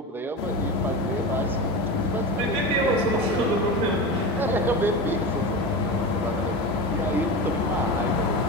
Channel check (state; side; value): normal; both; correlation 0.24